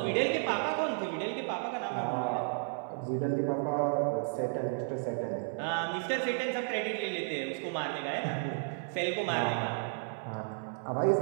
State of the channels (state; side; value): silent; left; digital silence